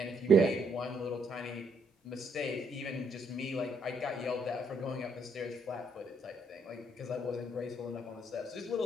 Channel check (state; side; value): normal; both; correlation 0.71